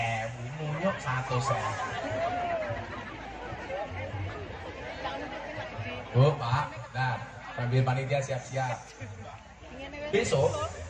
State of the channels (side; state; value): both; identical; correlation 1.00